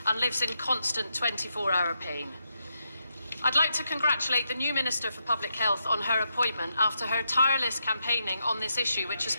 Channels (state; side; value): inverted; both; correlation -0.83